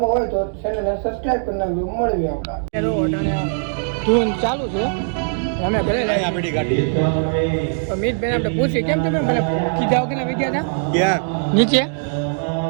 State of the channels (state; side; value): silent; left; digital silence